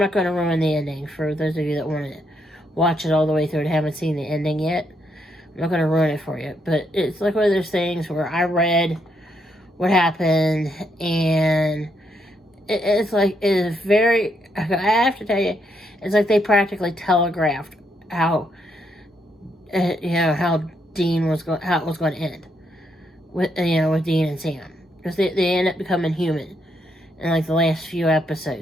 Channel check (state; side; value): normal; both; correlation 0.76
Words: going to ruin the ending for those of you that want to watch it all the way through and haven't seen the ending yet. I'm not going to ruin it for you, but it's like one of those things where I read what happened, and it's like, it is very, I have to tell you, it's like they practically telegraphed how, how Dean was going, how it was going to end with Dean and Sam, because they end up becoming human in like the last few